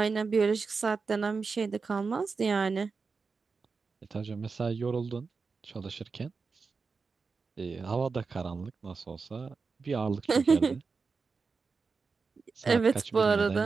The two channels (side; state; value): left; quieter; 4.7 dB